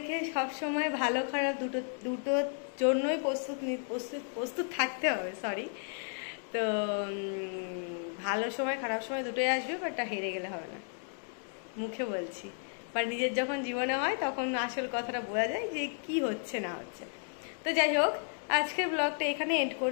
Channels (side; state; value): right; silent; 56 dB below the other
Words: সবসময় ভালো খারাপ দুটোর জন্যই প্রস্তুত থাকতে হবে। সরি, তো ভালো সময় খারাপ সময় দুটোই আসবে, বাট হেরে গেলে হবে না, মুখে বলছি। বা নিজের যখন জীবনে হয় তখন আসল কথাটা বোঝা যায় যে কি হচ্ছে না হচ্ছে। তো যাই হোক, আজকের ব্লগটা এখানে এন্ড